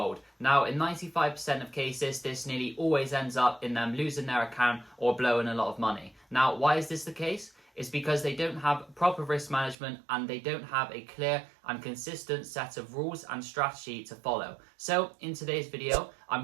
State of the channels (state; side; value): drops out; left; at 9.8 s